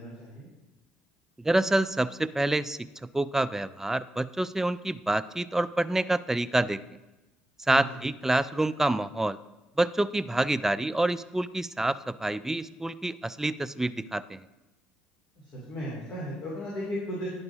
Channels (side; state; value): both; normal; correlation 0.94